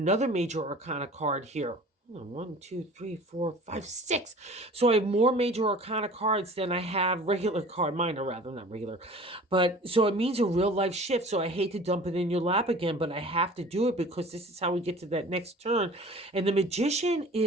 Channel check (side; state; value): both; normal; correlation 0.44